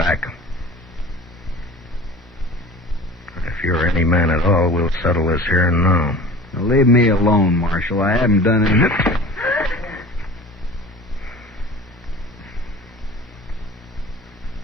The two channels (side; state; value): both; normal; correlation 0.41